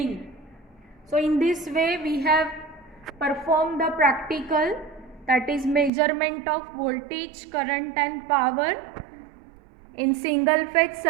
So in this way we have performed the practical, that is measurement of voltage, current and power in single phase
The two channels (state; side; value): drops out; left; at 5.9 s